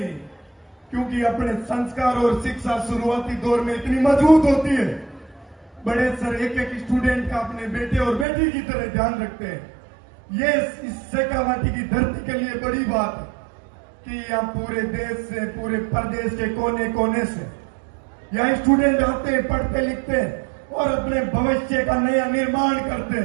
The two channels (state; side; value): drops out; left; at 8.2 s